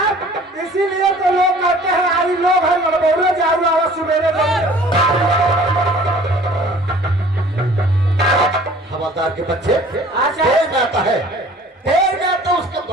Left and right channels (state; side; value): normal; both; correlation 0.50